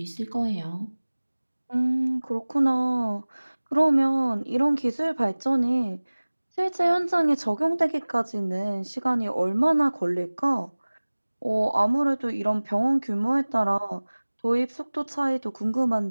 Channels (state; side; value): inverted; both; correlation -1.00